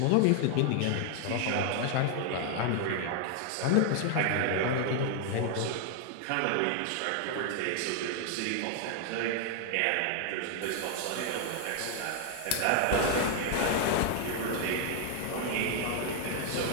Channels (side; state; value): both; different; correlation 0.00